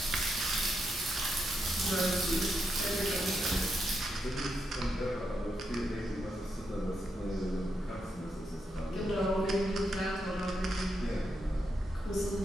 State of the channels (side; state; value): both; normal; correlation 0.83